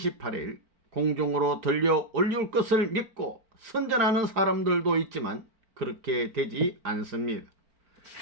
공중으로 들려 올릴 것을 믿고 선전하는 사람들도 있지만 그렇게 되지 않습니다.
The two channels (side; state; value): left; late; 4.8 ms